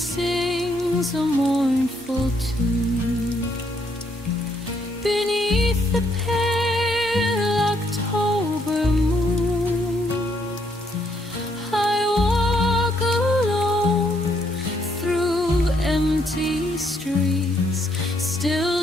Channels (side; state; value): both; normal; correlation 0.72